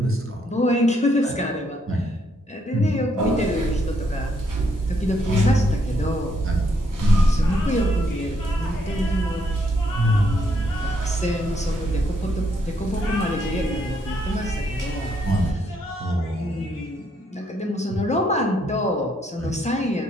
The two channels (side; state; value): both; normal; correlation 0.73